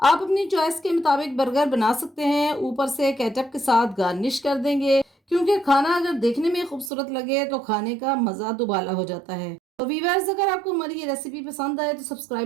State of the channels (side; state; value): left; drops out; at 6.9 s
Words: अपनी चॉइस के मुताबिक बर्गर बना सकते हैं। ऊपर से केचप के साथ गार्निश कर देंगे क्योंकि खाना अगर देखने में खूबसूरत लगे तो खाने का मज़ा दुबाला हो जाता है। तो वीवर्स, अगर आपको हमारी ये रेसिपी पसंद आए तो